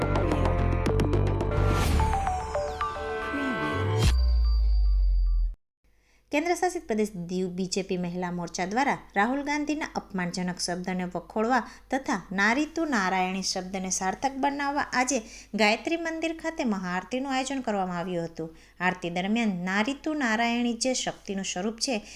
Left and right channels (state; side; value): identical; both; correlation 1.00